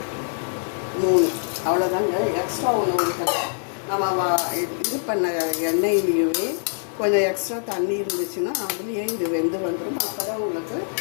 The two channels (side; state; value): right; silent; 63 dB below the other